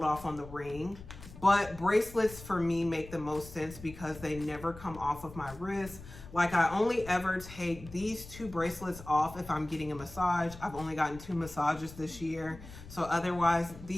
off on the ring. But bracelets for me make the most sense because they never come off of my wrist. Like I only ever take these 2 bracelets off if I'm getting a massage. I've only gotten 2 massages this year. So otherwise,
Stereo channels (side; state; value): left; noise; rumble, 16 dB below the sound